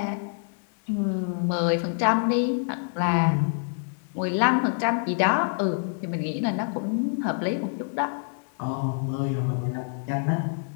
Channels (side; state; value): right; silent; digital silence